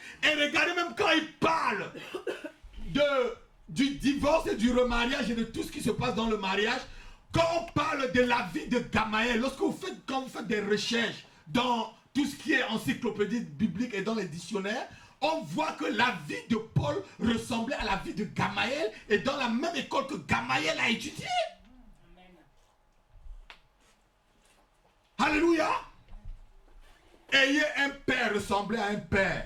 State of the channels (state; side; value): identical; both; correlation 1.00